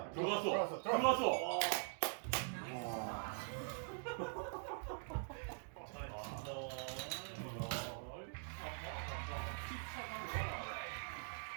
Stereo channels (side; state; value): left; silent; digital silence